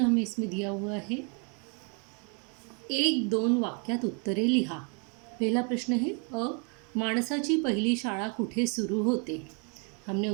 हमें इसमें दिया हुआ है, 1-2 वाक्यात उत्तरे लिहा। पहला प्रश्न है, माणसाची पहिली शाळा कुठे सुरू होते? हमने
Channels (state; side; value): quieter; left; 36.4 dB